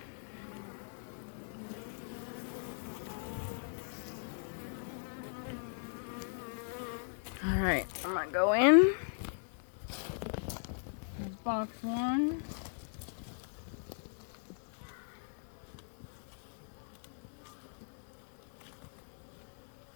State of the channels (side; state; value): right; silent; digital silence